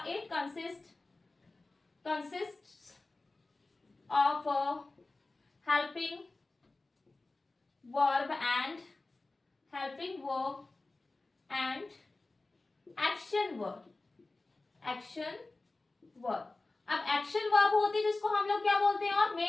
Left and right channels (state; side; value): quieter; right; 3.2 dB